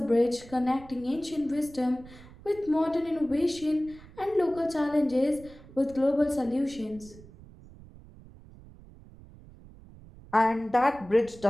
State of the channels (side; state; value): right; noise; rumble, 20 dB below the sound